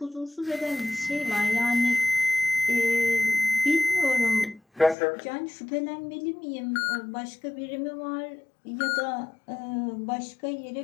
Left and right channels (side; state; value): right; drops out; at 5.0 s